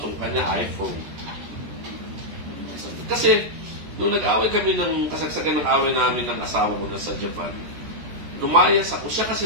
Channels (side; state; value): left; late; 14 ms